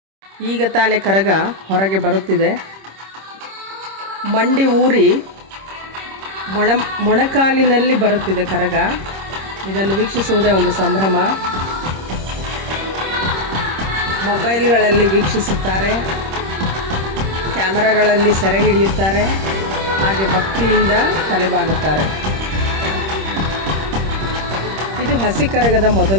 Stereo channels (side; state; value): left; late; 26 ms